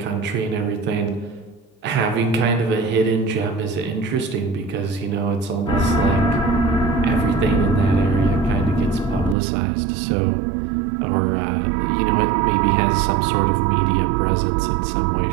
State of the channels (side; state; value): left; drops out; at 9.3 s